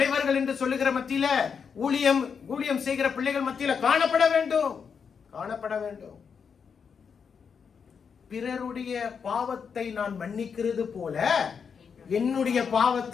என்று சொல்லுகிற மத்தியில, ஊழியம் செய்கிற பிள்ளைகள் மத்தியில காணப்பட வேண்டும். பிறருடைய பாவத்தை நான் மன்னிக்கிறது போல என்னுடைய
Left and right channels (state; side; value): quieter; right; 6.4 dB